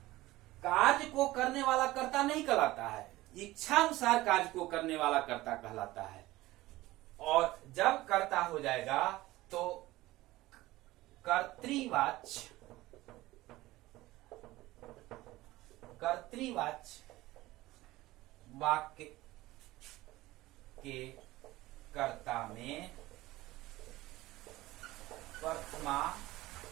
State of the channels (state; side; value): quieter; left; 17.9 dB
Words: कार्य को करने वाला कर्ता नहीं कहलाता है, इच्छानुसार कार्य को करने वाला कर्ता कहलाता है। और जब कर्ता हो जाएगा तो कर्तृवाच्य वाक्य के कर्ता में प्रथमा